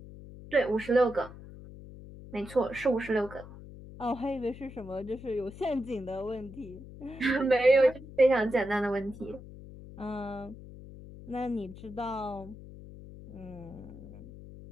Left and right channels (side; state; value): left; noise; hum, 15 dB below the sound